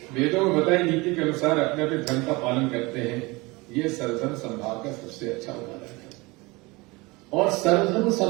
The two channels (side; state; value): left; quieter; 24.1 dB